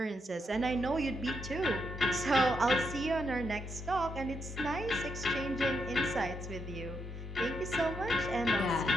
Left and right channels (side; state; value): both; normal; correlation 0.80